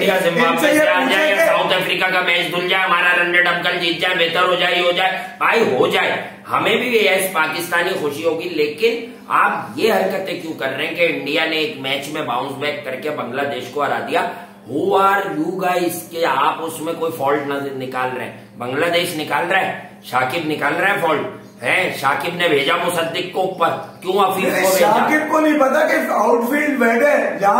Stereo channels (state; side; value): identical; both; correlation 1.00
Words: साउथ अफ्रीका का मैच धुल जाए, हमारा रनरेट अंकल जीत जाए, बेहतर हो जाए, हो जाए भाई, हो जाए, हमें भी यस पाकिस्तानी खुशी होगी। लेकिन आप ये हरकतें क्यों कर रहे हैं कि इंडिया ने एक मैच में बाउंस बैक करके बांग्लादेश को हरा दिया? हु आर यू गाइस के आप उसमें कोई फॉल्ट नजर निकाल रहे हैं? बांग्लादेश निकाल रहा है, शाकिब निकाल रहा है फॉल्ट है, शाकिब ने भेजा मुसद्दिक को ऊपर, क्यों अफीफ को भेजा? शाकिब को नहीं पता कि आउटफील्ड बैठे,